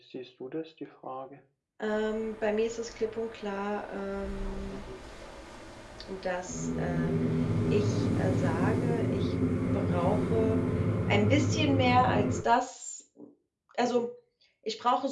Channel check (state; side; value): identical; both; correlation 1.00